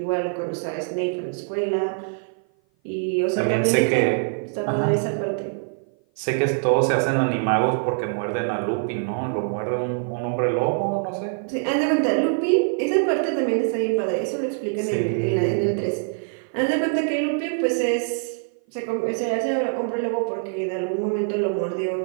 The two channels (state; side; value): silent; left; 56 dB below the other